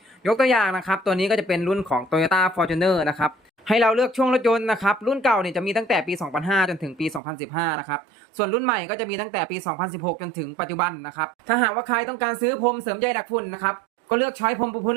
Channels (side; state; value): left; drops out; at 7.2 s